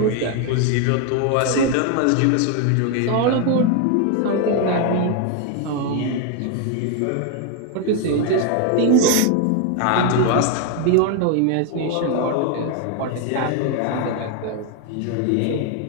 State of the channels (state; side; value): different; both; correlation 0.01